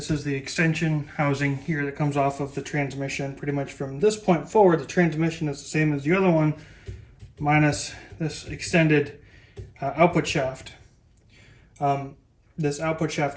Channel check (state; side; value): identical; both; correlation 1.00